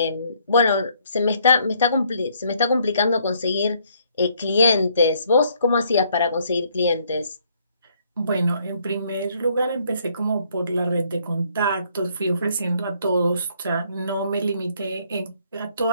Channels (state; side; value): inverted; both; correlation -0.67